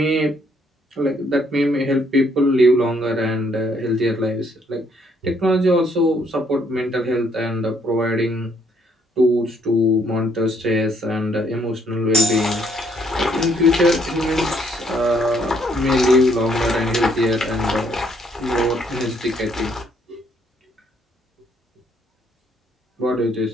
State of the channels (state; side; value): normal; both; correlation 0.68